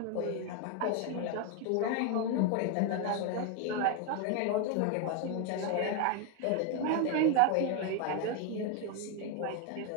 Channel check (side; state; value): both; different; correlation 0.01